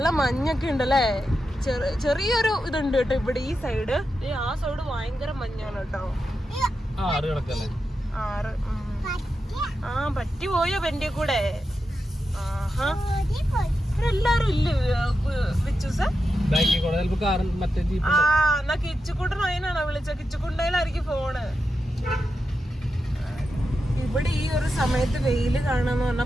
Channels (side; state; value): both; normal; correlation 0.89